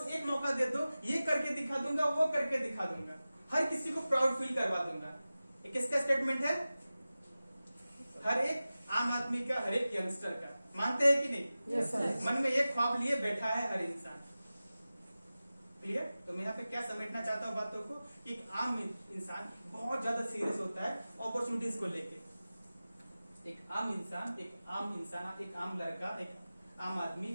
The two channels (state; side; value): inverted; both; correlation -0.96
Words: एक मौका दे दो, ये करके दिखा दूंगा, वो करके दिखा दूंगा, हर किसी को प्राउड फील करवा दूंगा। ये किसका स्टेटमेंट है? हर एक आम आदमी का, हर एक यंगस्टर का। मानते हैं कि नहीं? Yes sir. मन में एक ख्वाब लिए बैठा है हर इंसान। क्लियर? तो मैं यहाँ पे क्या समेटना चाहता हूँ बातों को, कि एक आम इंसान बहुत ज्यादा सीरियस होता है अपॉर्चुनिटीज को लेके। एक आम इंसान, एक आम लड़का, एक आम आदमी